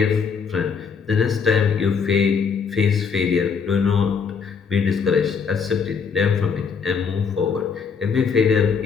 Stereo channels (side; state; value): right; quieter; 5.9 dB